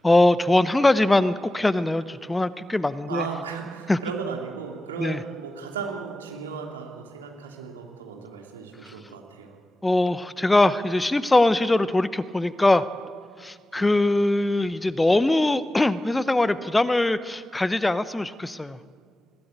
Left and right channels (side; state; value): both; normal; correlation 0.95